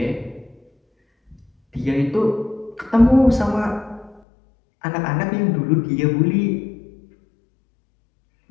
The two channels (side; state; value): right; drops out; at 4.2 s